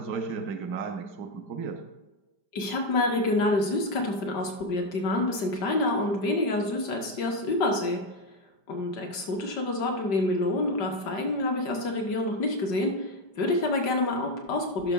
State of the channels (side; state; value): right; late; 5.1 ms